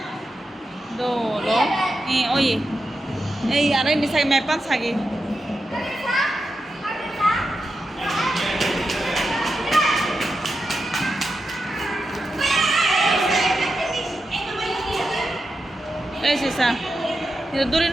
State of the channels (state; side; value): normal; both; correlation 0.88